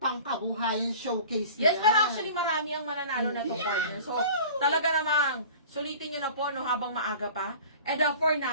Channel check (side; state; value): both; inverted; correlation -0.42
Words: showcase Yes, yan. pero actually marami ang mananalo na to, partner. So, talaga namang sulitin nyo na po habang maaga pa. And for